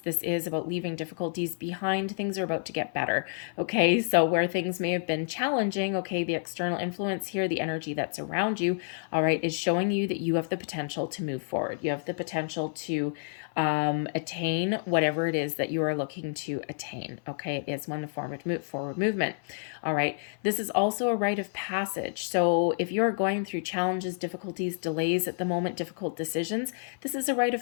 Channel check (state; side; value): silent; right; 58 dB below the other